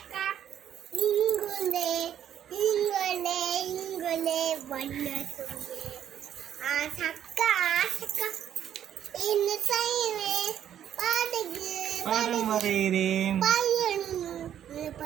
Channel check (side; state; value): left; quieter; 10.1 dB